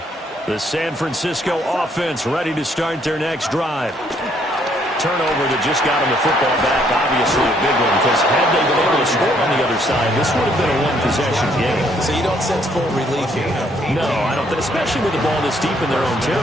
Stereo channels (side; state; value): both; normal; correlation 0.68